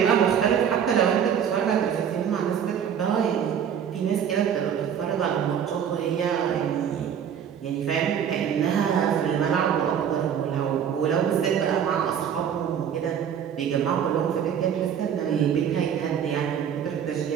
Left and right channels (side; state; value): left; quieter; 8.4 dB